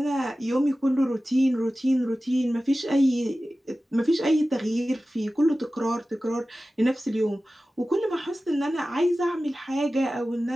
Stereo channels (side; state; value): both; normal; correlation 0.96